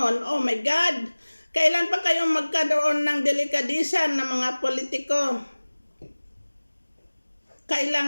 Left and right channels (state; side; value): inverted; both; correlation -1.00